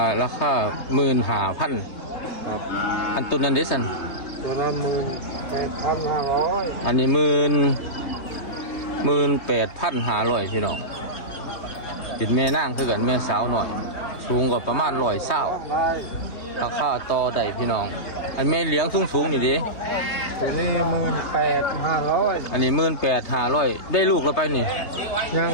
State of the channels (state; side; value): late; right; 3.2 ms